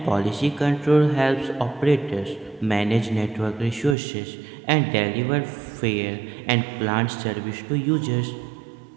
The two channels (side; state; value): left; drops out; at 4.0 s